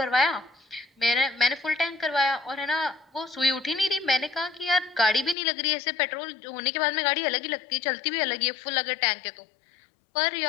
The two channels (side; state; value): right; drops out; at 5.4 s